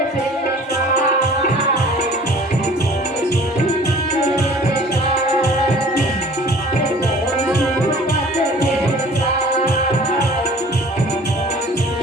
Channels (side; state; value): both; normal; correlation 0.48